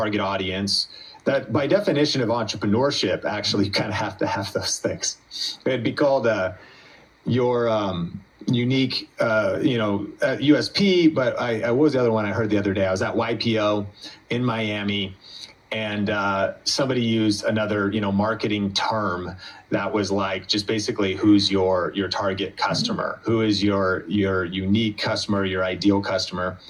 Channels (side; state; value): both; identical; correlation 1.00